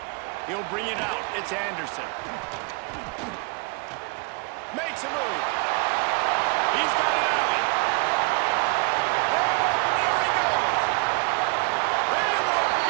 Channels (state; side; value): quieter; left; 31.7 dB